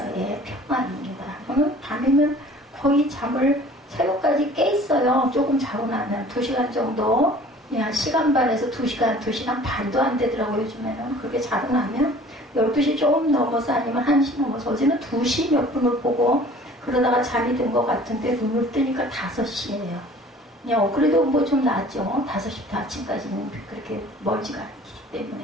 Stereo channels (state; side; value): normal; both; correlation 0.49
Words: 평안입니다. 저는 밤이면 거의 잠을 새벽까지 깨 있어요. 조금 자고 나면 2시간 정도, 그냥 시간 반에서 2시간, 2시간 반도 안 되더라고요. 요즘에는 그렇게 자고 나면 12시 조금 넘어서 아니면 1시 넘어서 어제는 2시 몇 분을 보고 그러다가 잠이 든 것 같은데 눈을 뜨니까 5시예요. 그래도 뭐 좀 낫죠. 5시부터 아침까지는 그렇게 멀지가 않기